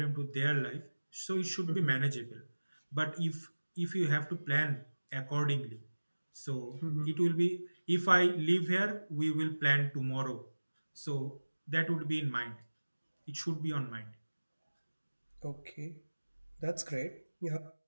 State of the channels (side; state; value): both; inverted; correlation -1.00